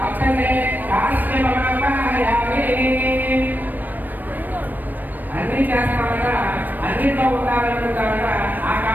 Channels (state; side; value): late; left; 0.088 ms